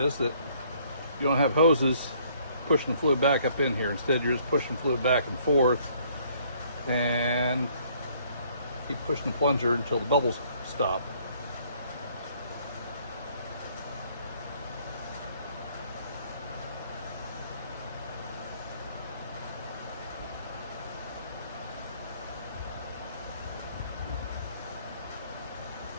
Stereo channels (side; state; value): both; inverted; correlation -0.62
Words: that you don't have hoses pushing the fluid back up in here. Instead, you're just pushing fluid back and forth and keep pushing the plunger until the bubbles stop.